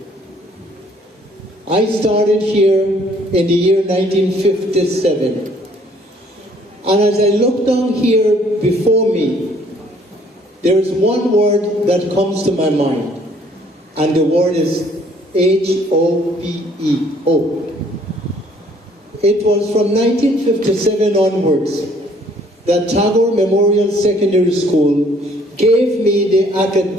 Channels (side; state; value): both; normal; correlation 0.61